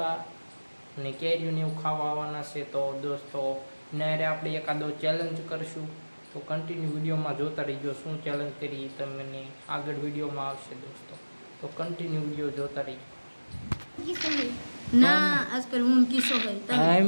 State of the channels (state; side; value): inverted; both; correlation -1.00